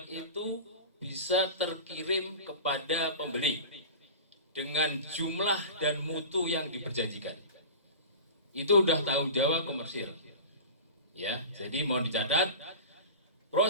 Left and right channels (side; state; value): both; inverted; correlation -0.32